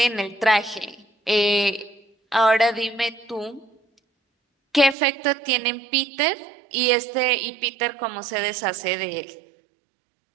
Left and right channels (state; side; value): drops out; left; at 5.0 s